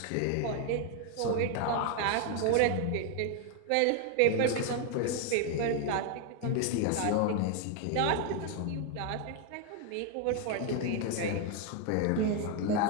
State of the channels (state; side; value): different; both; correlation 0.01